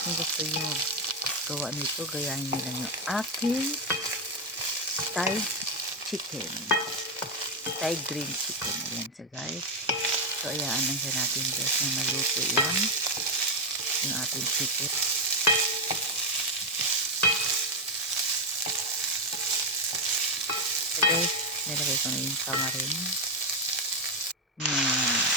kung gusto nyo gawa nito, gayahin nyo lang yung aking Thai chicken. Thai green chicken. Ayan sa guys. So ayaan lang siya natin guys na maluto yan. Yung ating chicken. So guys, nilagay ko na yung tamarin.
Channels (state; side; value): normal; both; correlation 0.07